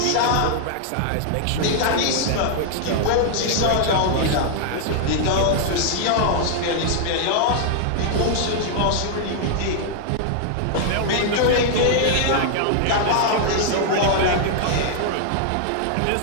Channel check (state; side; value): different; both; correlation -0.01